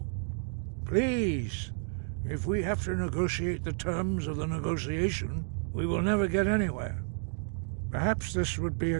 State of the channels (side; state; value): left; silent; 57 dB below the other